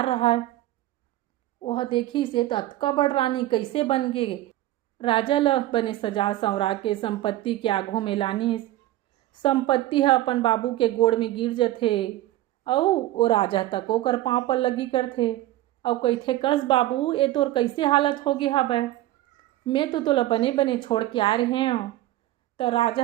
रहा। वह देखी से अतका बड़ रानी कैसे बन गे। राजा ल बने सजा संवरा के संपत्ति के आघू में लानिस। संपत्ति है अपन बाबू के गोड़ में गिर जाथे और वो राजा तक ओकर पाँव पर लगी करथे और कहथे कस बाबू ये तोर कैसे हालत हो गया हबै, मैं तो तोला बने बने छोड़ के आए रहे हूँ। तो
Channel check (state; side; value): quieter; left; 15.4 dB